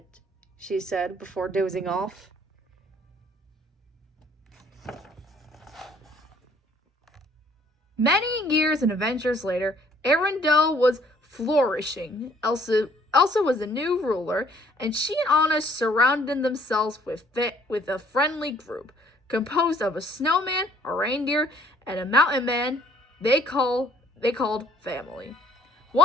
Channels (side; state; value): both; normal; correlation 0.61